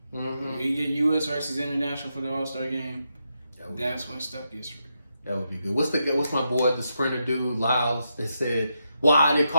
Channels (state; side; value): inverted; both; correlation -0.84